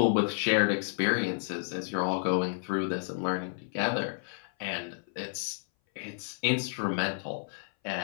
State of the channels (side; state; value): right; silent; 57 dB below the other